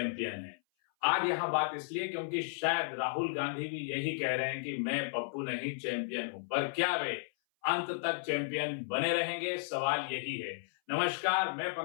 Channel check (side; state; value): right; silent; 55 dB below the other